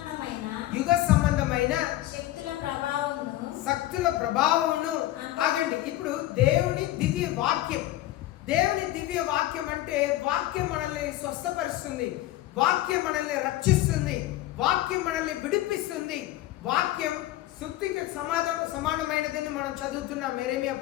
యుగ సంబంధమైన శక్తుల ప్రభావమును. ఆగండి, ఇప్పుడు దేవుని దివ్య వాక్యం, దేవుని దివ్య వాక్యం అంటే వాక్యం మనల్ని స్వస్థపరుస్తుంది, వాక్యం మనల్ని రక్షిస్తుంది, వాక్యం మనల్ని విడిపిస్తుంది. వాక్యం శుద్ధికి సమానమైనదని మనం చదువుతున్నాం యెరెమీయా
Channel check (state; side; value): quieter; right; 15.2 dB